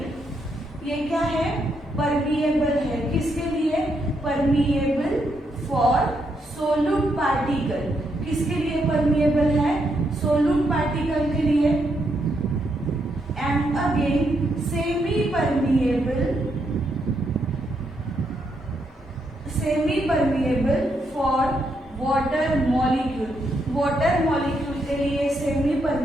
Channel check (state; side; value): normal; both; correlation 0.78